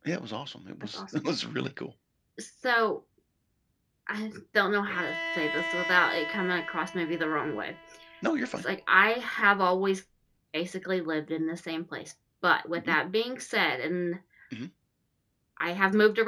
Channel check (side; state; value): both; identical; correlation 1.00